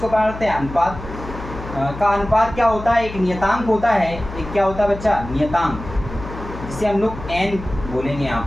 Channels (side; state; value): left; noise; hum, 11 dB below the sound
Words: क्या करते हैं, अनुपात का अनुपात क्या होता है, एक नियतांक होता है, एक क्या होता है बच्चा, नियतांक, जिसे हम लोग एन बोलेंगे। यहाँ